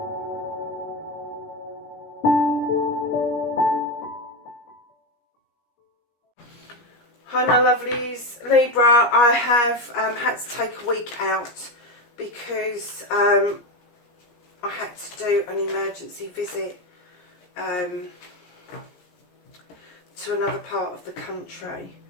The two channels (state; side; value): late; right; 17 ms